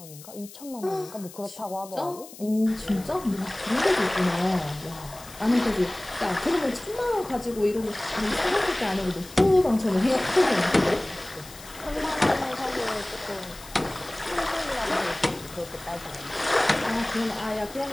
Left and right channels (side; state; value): left; noise; hiss, 18 dB below the sound